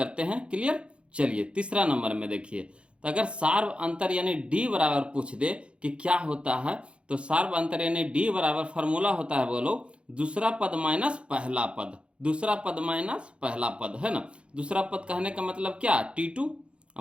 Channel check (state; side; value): late; left; 0.058 ms